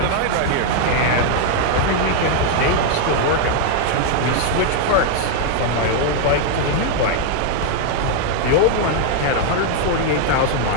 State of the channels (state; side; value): different; both; correlation 0.00